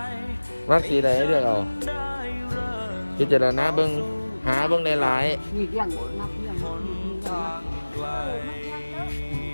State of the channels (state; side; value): inverted; both; correlation -1.00